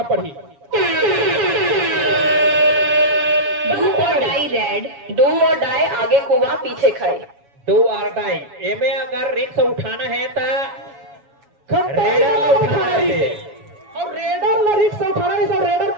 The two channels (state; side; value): late; left; 7.1 ms